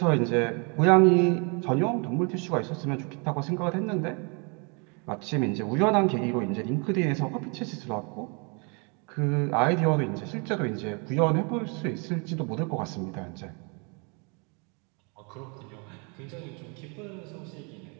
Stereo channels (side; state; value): left; quieter; 34.0 dB